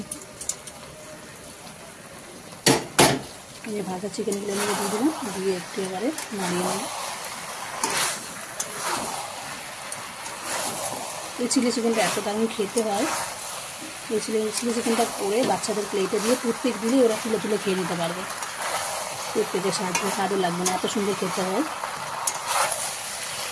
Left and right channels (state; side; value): identical; both; correlation 1.00